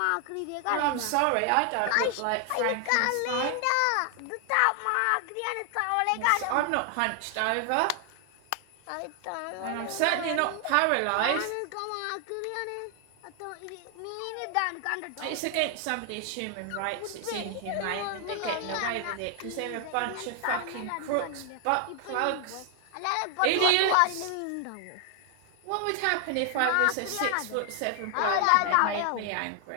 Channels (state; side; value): different; both; correlation 0.00